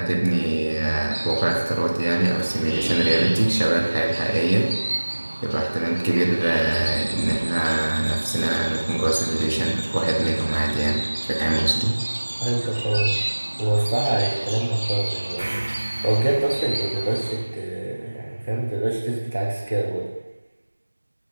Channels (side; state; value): both; inverted; correlation -1.00